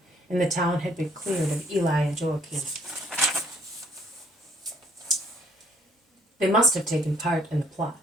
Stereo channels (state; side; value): normal; both; correlation 0.62